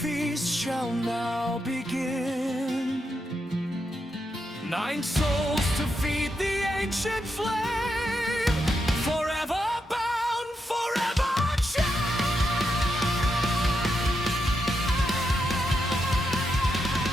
shall now begin. 9 souls to feed the ancient flame, forever bound, forever chained.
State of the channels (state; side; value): normal; both; correlation 0.84